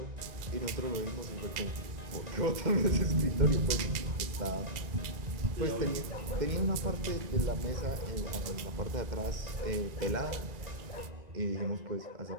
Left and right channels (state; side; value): late; left; 1.9 ms